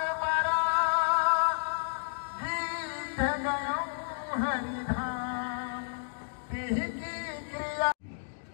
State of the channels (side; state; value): right; silent; digital silence